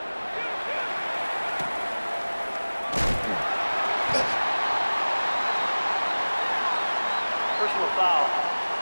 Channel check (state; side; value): inverted; both; correlation -1.00